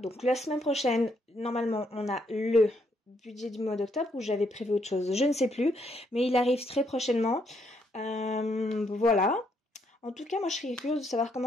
la semaine prochaine, normalement, on a le budget du mois d'octobre où j'avais prévu autre chose. Je ne sais plus, mais il arrive très prochainement. Voilà. En tout cas, moi, je serais curieuse de savoir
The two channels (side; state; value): both; normal; correlation 0.74